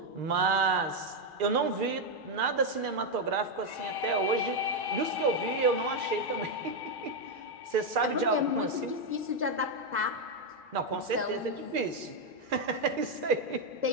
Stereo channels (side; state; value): left; late; 2.4 ms